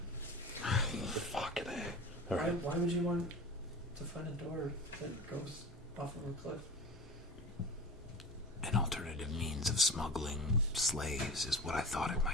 Fucking A. Why would you want to find a door that goes off of a cliff? An alternative means of smuggling slaves is what I thought it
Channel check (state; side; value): normal; both; correlation 0.33